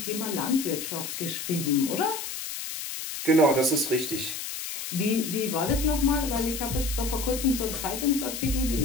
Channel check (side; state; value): left; noise; hiss, 6 dB below the sound